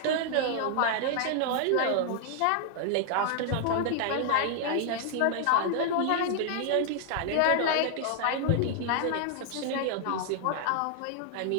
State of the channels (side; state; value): both; different; correlation 0.00